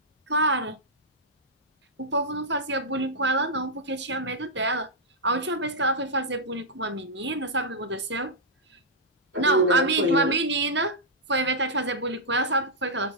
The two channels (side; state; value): both; normal; correlation -0.08